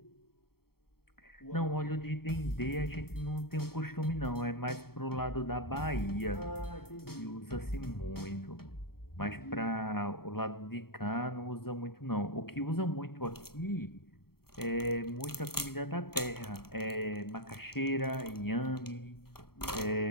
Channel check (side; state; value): right; late; 0.95 ms